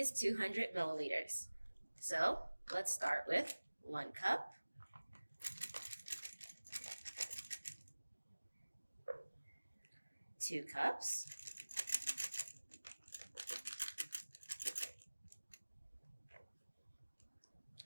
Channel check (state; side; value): inverted; both; correlation -1.00